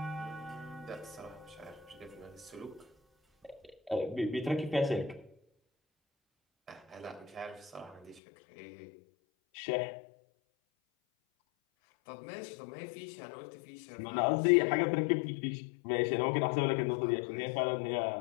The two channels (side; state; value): right; drops out; at 8.2 s